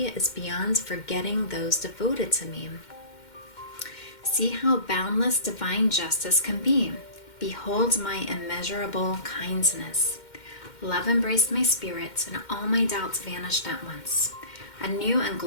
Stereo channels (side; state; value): right; late; 2.1 ms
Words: is beyond forgetting those devoted to me. See how boundless divine justice can be. Behold my immeasurable kindness." Love embraced my spirit, and all my doubts vanished at once. A new and